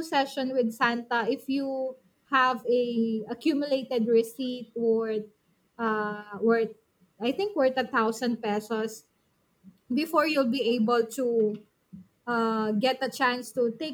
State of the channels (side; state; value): both; identical; correlation 1.00